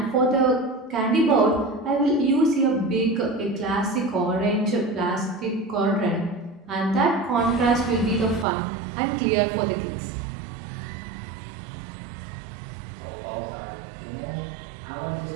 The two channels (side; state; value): left; drops out; at 8.5 s